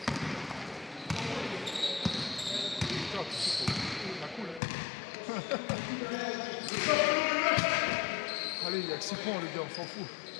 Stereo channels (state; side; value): drops out; right; at 4.6 s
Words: Allez, il y a que 6 points, les gars, on s'en fout.